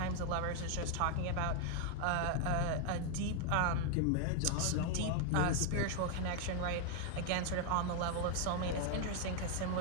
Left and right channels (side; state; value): both; different; correlation 0.00